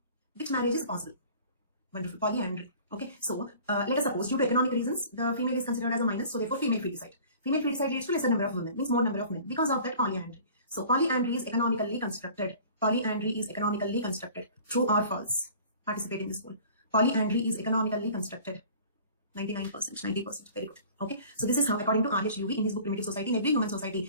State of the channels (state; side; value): inverted; both; correlation -0.46